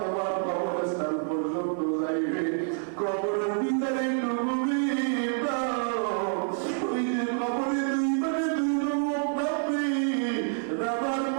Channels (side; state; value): left; silent; 60 dB below the other